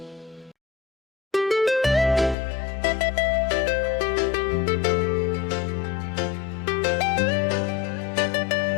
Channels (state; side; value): drops out; right; at 2.4 s